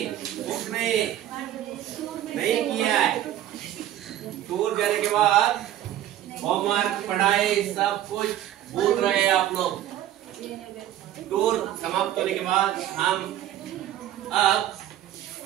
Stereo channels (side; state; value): left; quieter; 12.5 dB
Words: बुक नहीं किया है। टूर जाने के बाद होमवर्क, पढ़ाई सब कुछ भूल रहे हैं आप लोग। टूर समाप्त होने के बाद हम अब